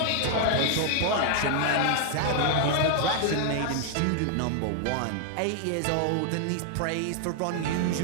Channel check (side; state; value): both; different; correlation 0.00